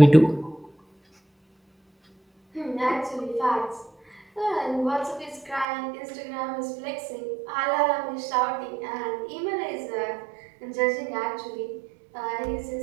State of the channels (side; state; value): left; drops out; at 5.7 s